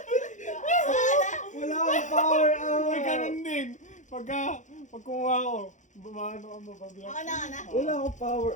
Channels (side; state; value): right; late; 0.35 ms